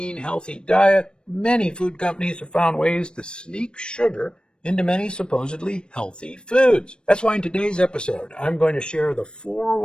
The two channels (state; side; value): late; right; 0.053 ms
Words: healthy diet, many food companies have found ways to sneak sugar into many supposedly healthy foods. That's why in today's episode, I'm going to share the 4